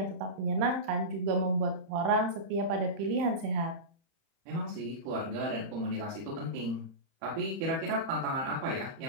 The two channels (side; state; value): left; late; 31 ms